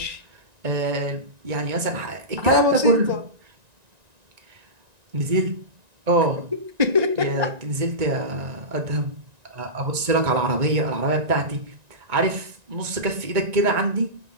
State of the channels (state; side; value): late; left; 1.9 ms